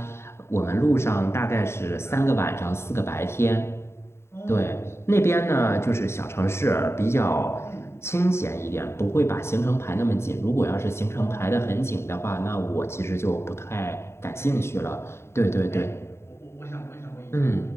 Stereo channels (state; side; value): late; right; 0.12 ms